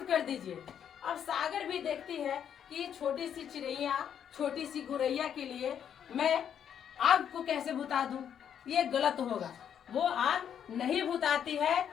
कर दीजिए। अब सागर भी देखती है कि छोटी सी चिड़ैया, छोटी सी गुरैया के लिए मैं आग को कैसे बुझा दूं, ये गलत होगा। वो आग नहीं बुझाती है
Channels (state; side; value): quieter; right; 8.8 dB